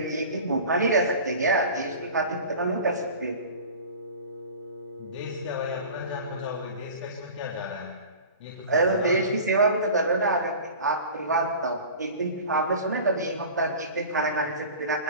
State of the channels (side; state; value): both; inverted; correlation -0.38